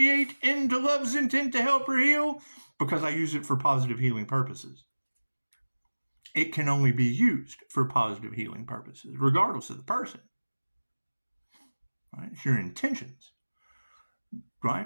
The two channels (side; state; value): both; inverted; correlation -1.00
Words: into love's intent to help or heal? Because I use it for positive healing purposes. It can only be used for positive healing purposes, regardless of the person. Right? It's your intentions.